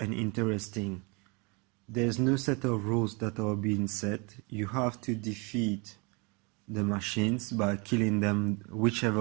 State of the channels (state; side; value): quieter; left; 30.0 dB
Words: interesting. There's no set of rules that are being set. You have to defeat the machines by killing them